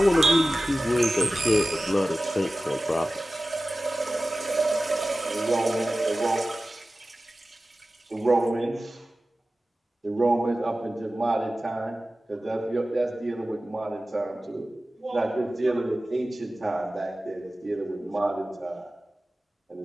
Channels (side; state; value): both; normal; correlation 0.96